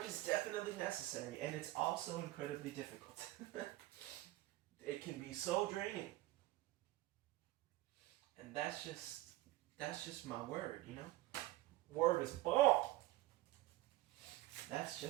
is definitely necessary, and it's also incredibly difficult. It can be so draining. And that's just my word, you know? Word is bomb. That's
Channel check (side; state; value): left; quieter; 17.1 dB